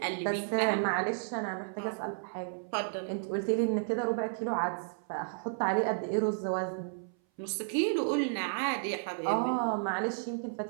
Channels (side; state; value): left; silent; 56 dB below the other